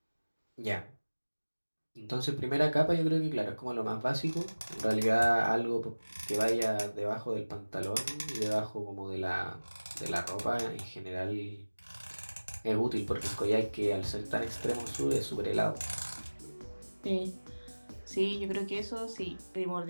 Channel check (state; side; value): inverted; both; correlation -1.00